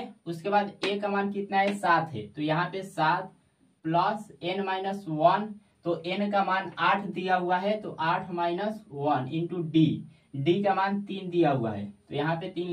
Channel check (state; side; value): identical; both; correlation 1.00